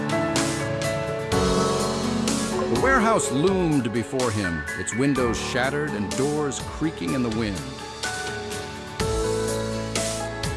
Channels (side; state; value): both; identical; correlation 1.00